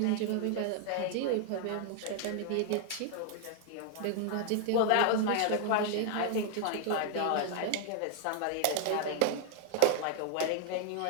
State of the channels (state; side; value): different; both; correlation 0.00